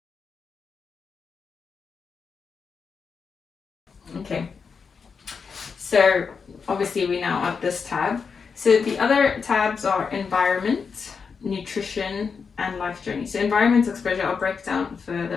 Okay. So obviously we're now at this tab. So the other tabs are environment, nutrition, and life journey. So environment exposure I'll break down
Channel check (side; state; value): right; quieter; 5.7 dB